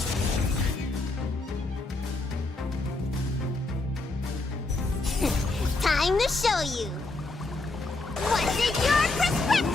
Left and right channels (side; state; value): right; quieter; 3.2 dB